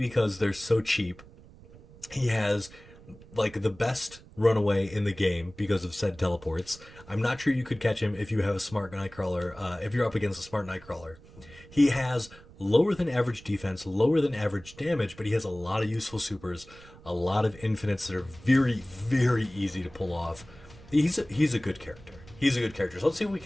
they're so cheap. He has like the best runaway in the game because of said teleports. I'm not sure you could catch him if you have a smart Nightcrawler, if you're up against a smart Nightcrawler. He has lower than average defense, lower than average damage, but he has a lot of useful supers, a lot of infinites that are very, very easy to pull off. He's a good character. He's a good character. So let's see if we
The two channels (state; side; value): noise; right; rumble, 21 dB below the sound